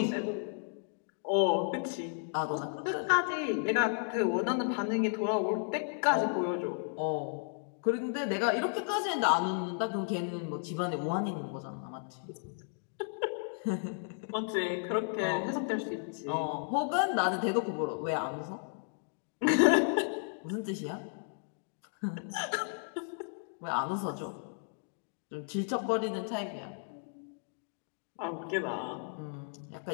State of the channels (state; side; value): silent; right; 55 dB below the other